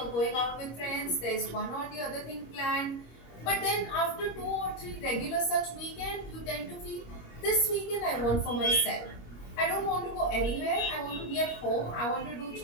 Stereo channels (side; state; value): right; late; 26 ms